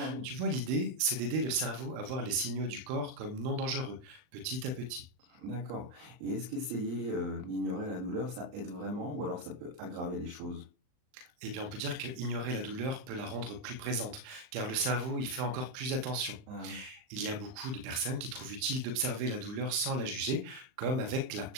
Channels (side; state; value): left; late; 39 ms